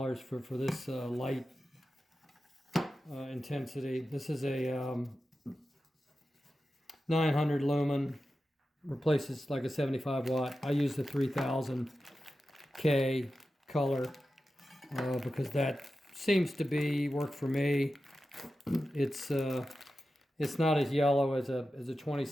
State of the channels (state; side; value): normal; both; correlation 0.92